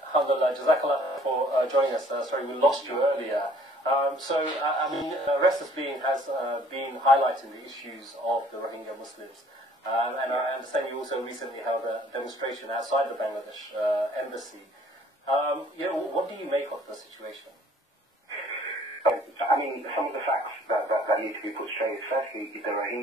Alhamdulillah, Jazakallah for joining us. Sorry, we lost you earlier. Restless Being has been highlighting the issues of the Rohingya Muslims. And I understand you also recently held a demonstration outside the Bangladesh embassy. What do you make of the situation? I mean, some of the facts that need to be put straight. Firstly, the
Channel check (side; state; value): both; normal; correlation 0.57